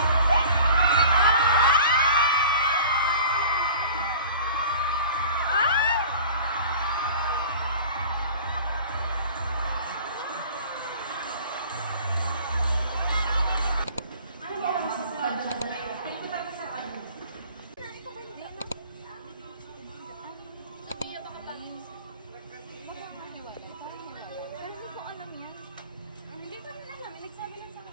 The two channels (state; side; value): inverted; both; correlation -0.43